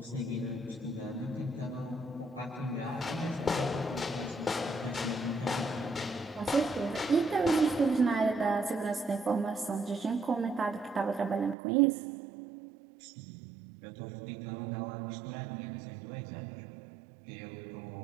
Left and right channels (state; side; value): drops out; left; at 11.6 s